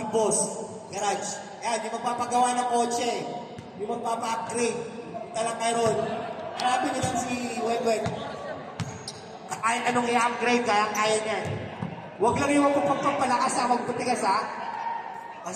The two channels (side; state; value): both; identical; correlation 1.00